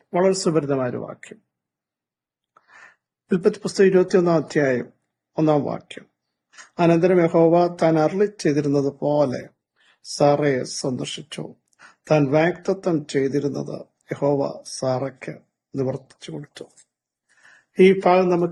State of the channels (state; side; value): identical; both; correlation 1.00